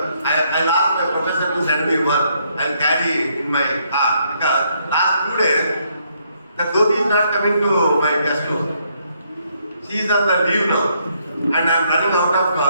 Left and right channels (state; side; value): inverted; both; correlation -0.72